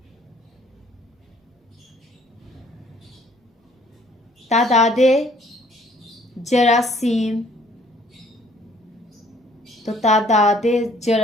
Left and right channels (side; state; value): both; normal; correlation 0.60